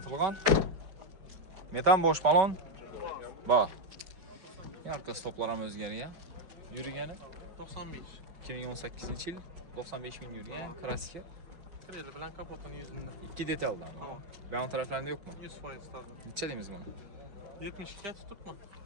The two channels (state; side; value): late; left; 5.2 ms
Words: Metan bosh balon bor. Yarqa stoplar ham o'zgargan. Yurgani 95. 2018-yil 95 ming yurgan. Kraska. Kreli bilan kapotuni yüzünde. İki detaldan. Tamam. Ben taraflarında yok mu? 100% tabii. Neçə deyimiz bunu? 72'ye tutup mu?